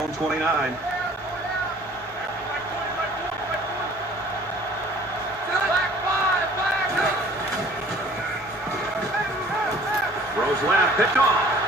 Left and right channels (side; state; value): both; normal; correlation 0.51